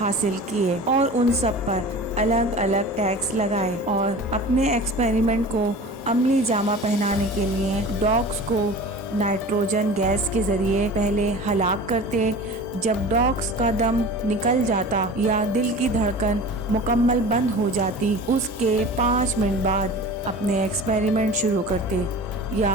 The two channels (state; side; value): normal; both; correlation 0.37